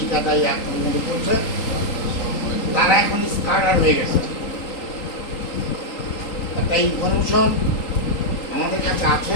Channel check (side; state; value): right; late; 3.8 ms